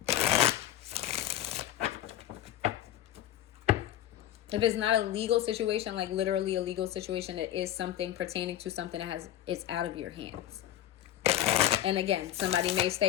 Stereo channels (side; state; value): right; quieter; 12.3 dB